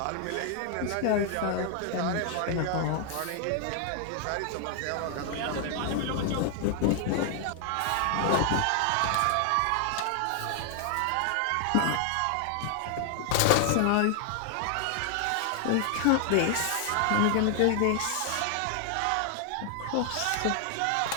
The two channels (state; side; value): different; both; correlation 0.00